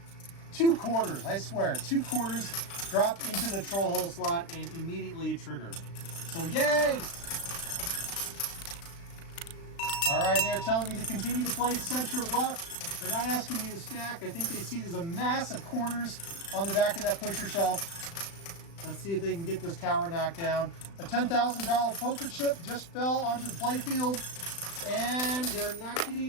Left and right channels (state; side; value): late; right; 36 ms